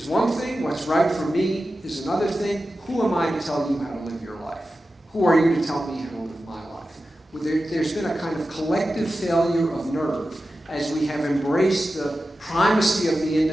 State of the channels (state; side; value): normal; both; correlation 0.93